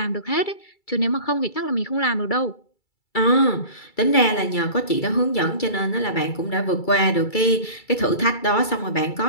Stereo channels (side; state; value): right; late; 2.3 ms